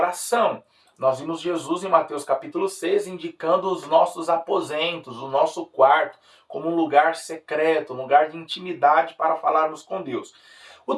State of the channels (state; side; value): identical; both; correlation 1.00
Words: Nós vimos Jesus em Mateus capítulo 6 indicando os nossos aposentos, o nosso quarto, como um lugar secreto, um lugar de intimidade para falarmos com Deus. O